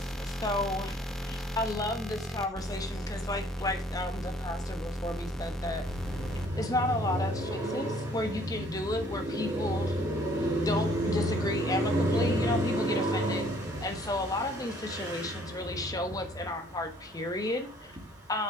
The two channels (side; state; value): both; normal; correlation 0.60